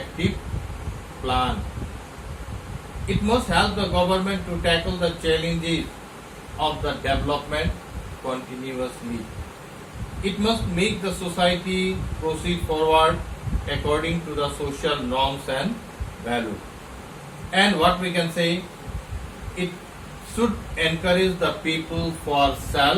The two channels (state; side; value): identical; both; correlation 1.00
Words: plan. It must help the government to tackle the challenges of the development continuously. It must make the society proceed forward according to the social norms and values. And what we can say, it should encourage the people for